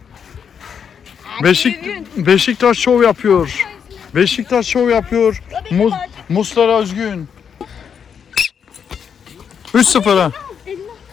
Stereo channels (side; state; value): right; quieter; 7.3 dB